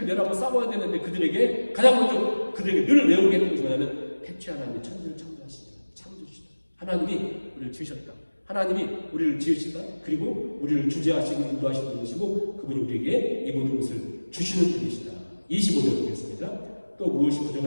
내라고 싸워야 되는데 그들에게 가장 먼저 그들에게 늘 외우게 했던 것이 뭐냐면 태초에 하나님이 천지를 창조하시다. 창조주시다. 하나님이 우리를 지으셨다. 하나님이 우리를 지으시다. 그리고 우리를 주재하시고 인도하시는 분이시고 그분이 우리에게 이 모든 것을 주시는 분이시다. 25절 보겠습니다. 또 무엇이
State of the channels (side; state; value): both; inverted; correlation -1.00